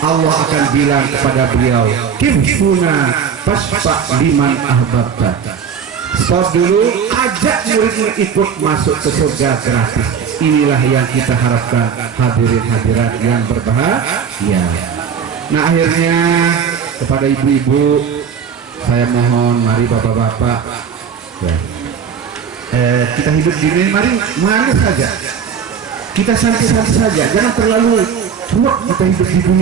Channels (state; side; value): quieter; left; 7.0 dB